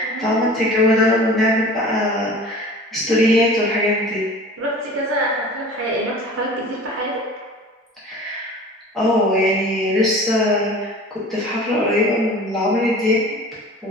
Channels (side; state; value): both; normal; correlation 0.42